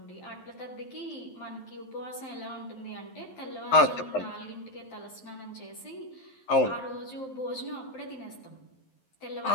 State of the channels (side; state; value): right; late; 11 ms